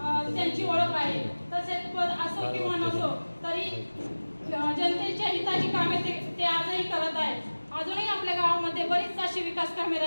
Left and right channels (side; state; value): both; inverted; correlation -1.00